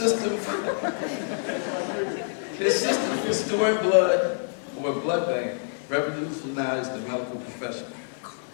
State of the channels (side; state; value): right; silent; 60 dB below the other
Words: for storing blood, or blood bank, revolutionized the medical profession.